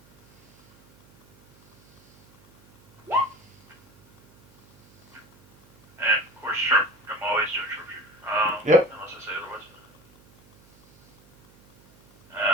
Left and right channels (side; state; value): right; noise; hum, 29 dB below the sound